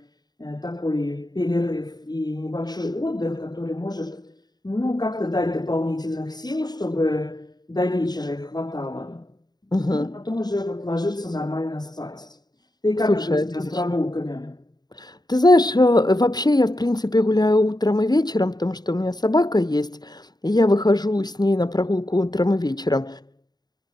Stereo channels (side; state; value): right; late; 0.20 ms